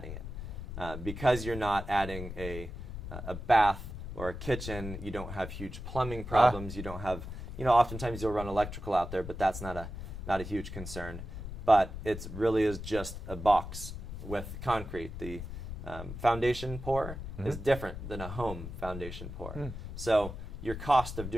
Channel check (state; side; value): noise; left; rumble, 8 dB below the sound